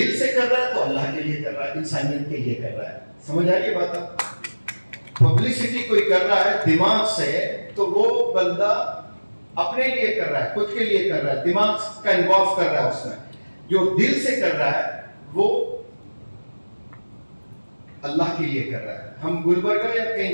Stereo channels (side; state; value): both; inverted; correlation -1.00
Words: से कर रहा है तो अल्लाह के लिए कर रहा है, इंसानियत के लिए कर रहा है। समझ आ रही है बात? पब्लिसिटी कोई कर रहा है दिमाग से तो वो बंदा अपने लिए कर रहा है, खुद के लिए कर रहा है, दिमाग का इन्वॉल्व कर रहा है उसमें। जो दिल से कर रहा है वो अल्लाह के लिए कर रहा है। हम गुलबर्गा या कहीं